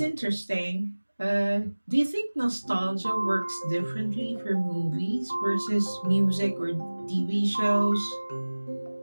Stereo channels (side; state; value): both; inverted; correlation -1.00